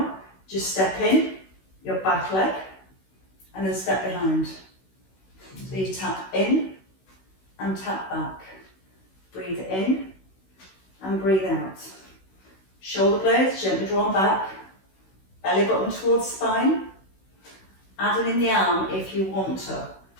Just step in, your back leg, and then step behind. So you tap in and tap back. Breathe in and breathe out. Shoulder blades gently drawn back. Belly button towards spine. Adding in the arm if you want to.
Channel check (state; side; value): late; right; 16 ms